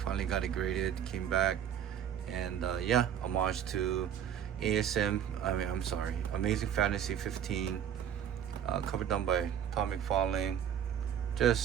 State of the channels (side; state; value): left; quieter; 9.3 dB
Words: got it graded, came back, and yeah, homage to Amazing Fantasy 15, cover done by Tom McFarlane.